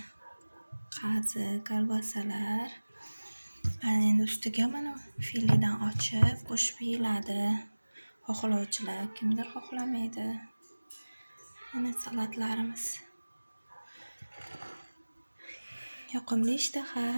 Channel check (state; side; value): inverted; both; correlation -1.00